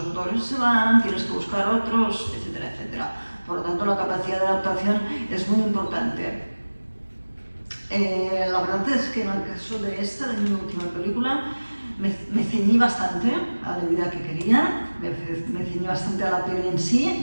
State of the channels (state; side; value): inverted; both; correlation -1.00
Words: actores se van, tienes que buscar otros, etcétera, etcétera. Por lo tanto, la capacidad de adaptación es muy importante. La verdad es que en el caso de mi última película, me ceñí bastante a la idea que quería, me ceñí bastante a la peli en